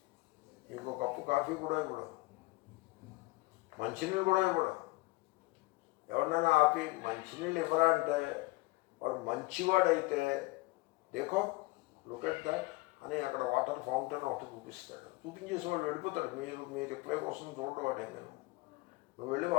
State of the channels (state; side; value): quieter; right; 22.8 dB